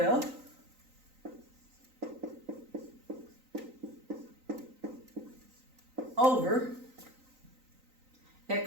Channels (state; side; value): late; left; 3.9 ms